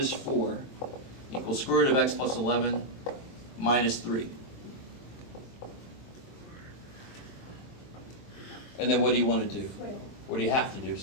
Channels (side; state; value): right; late; 23 ms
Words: 4 equals square root of x plus 11 minus 3. And then what do you want to do? What do you have to do?